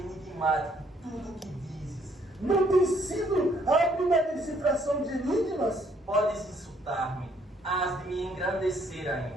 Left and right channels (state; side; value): normal; both; correlation 0.66